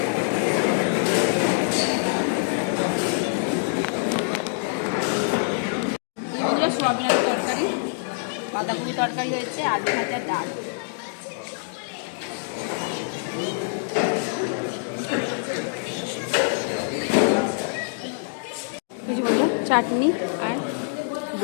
সোয়াবিনের তরকারি, বাঁধাকপি তরকারি হয়েছে, আলু ভাজা, ডাল। চাটনি আর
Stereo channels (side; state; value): right; silent; digital silence